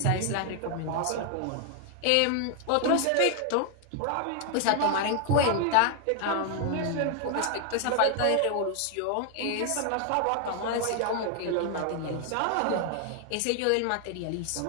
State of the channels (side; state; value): both; different; correlation 0.00